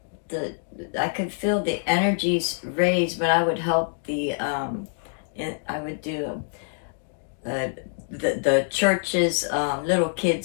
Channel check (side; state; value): right; silent; digital silence